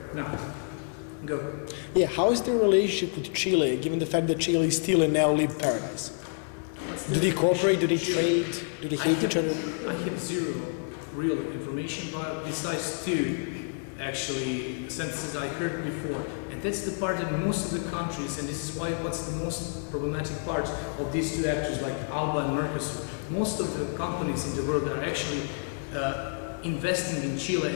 Now, go. Yeah, how is the relationship with Chile, given the fact that Chile is still a neoliberal paradise? Do they cooperate? Do they trade? Do they hate each other? I have zero real information, but besides two, actually, sentences I heard before. And that's the part that most of the countries, and this is why what's the most problematic part of these two actors like ALBA and MERCOSUR, most of the companies in the world are actually investing in Chile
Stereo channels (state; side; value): silent; right; 59 dB below the other